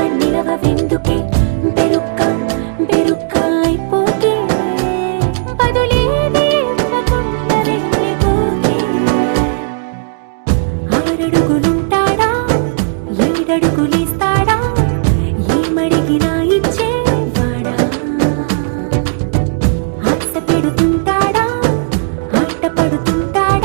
నిలవెందుకే బెరుక్క బెరుక్క అయిపోకే బదులేది ఇవ్వకుండా వెళ్ళిపోకే ఆరడుగులుంటాడా ఏడడుగులేస్తాడా ఏమడిగినా ఇచ్చేవాడా ఆశ పెడుతుంటాడా ఆట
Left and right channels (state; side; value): silent; left; digital silence